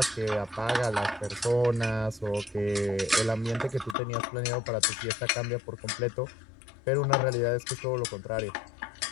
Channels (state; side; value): drops out; right; at 4.0 s